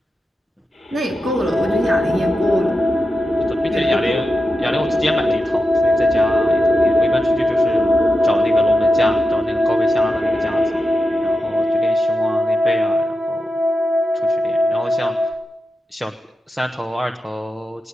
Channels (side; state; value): both; normal; correlation 0.90